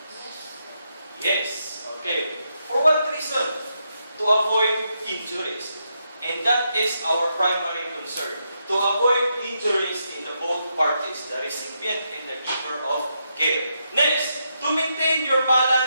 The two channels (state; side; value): inverted; both; correlation -0.81